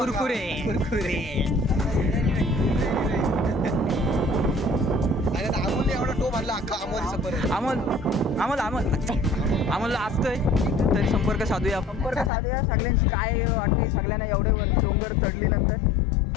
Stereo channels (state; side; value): drops out; right; at 12.3 s